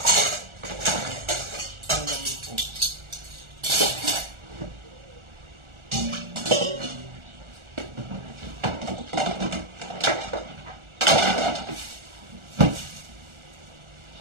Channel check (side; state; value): left; late; 1.4 ms